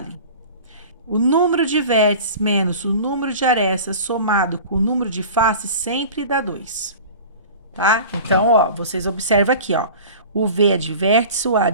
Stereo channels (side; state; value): both; inverted; correlation -0.39